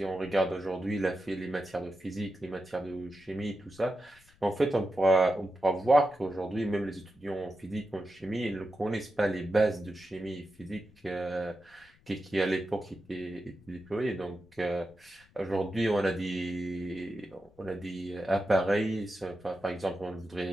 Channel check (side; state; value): left; noise; rumble, 29 dB below the sound